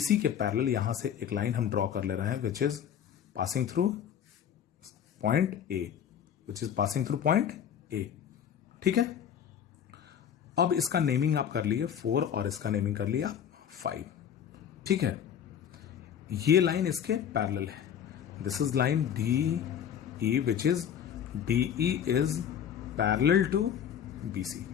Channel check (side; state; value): right; quieter; 8.9 dB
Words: के पैरेलल यहां से एक लाइन हम ड्रॉ कर ले रहे हैं which is passing through point A, which is passing through point A, ठीक है। अब इसका नेमिंग आप कर लिए 4 और इसका नेमिंग कर लिया 5, ठीक है। ये लाइन इसके पैरेलल है। This is line DE which is DE is parallel to BC,